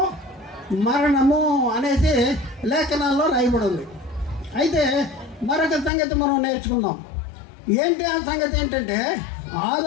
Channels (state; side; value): drops out; right; at 5.9 s